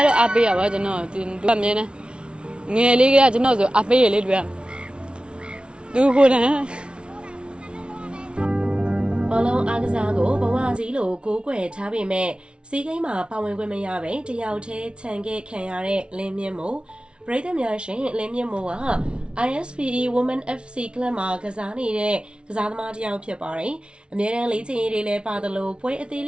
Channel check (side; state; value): left; late; 0.057 ms